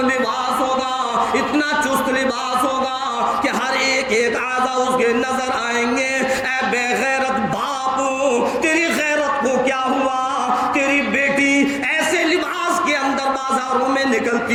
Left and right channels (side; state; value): both; identical; correlation 1.00